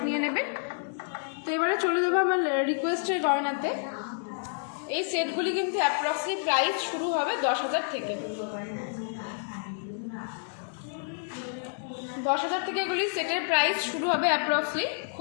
নিয়ে নেবেন। তো এবারে চলে যাবো আমার রিকোয়েস্টের গয়নাতে। এই সেটগুলি কিন্তু অ্যাপ্রক্সলি প্রাইস শুরু হবে 10,000 থেকে। 10,000 থেকে এগুলি সেটের প্রাইস শুরু হবে অ্যাপ্রক্সলি।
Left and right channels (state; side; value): silent; right; digital silence